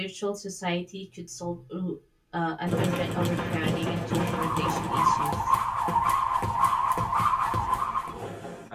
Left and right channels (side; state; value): both; identical; correlation 1.00